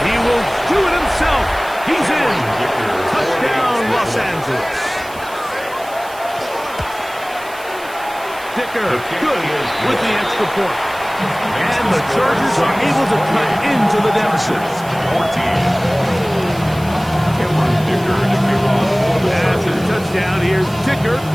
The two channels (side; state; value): right; noise; hiss, 19 dB below the sound